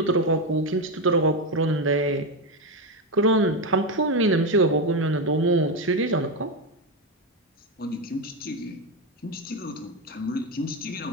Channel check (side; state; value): both; normal; correlation 0.10